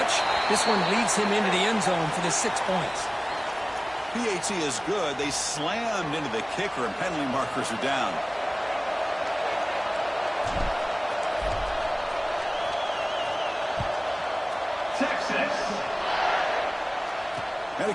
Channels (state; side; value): identical; both; correlation 1.00